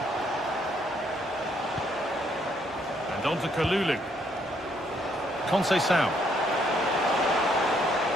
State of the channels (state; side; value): normal; both; correlation 0.70